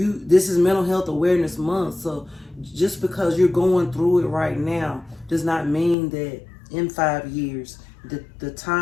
is Mental Health Awareness Month. So just because you're going through it right now does not mean that in 5 years, the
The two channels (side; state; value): right; drops out; at 6.0 s